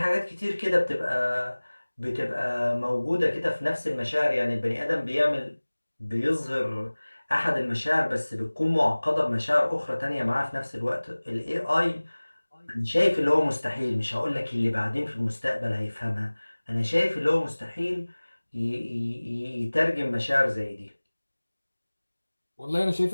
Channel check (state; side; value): inverted; both; correlation -1.00